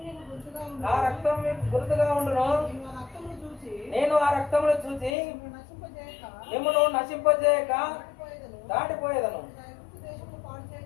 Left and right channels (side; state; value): right; drops out; at 5.2 s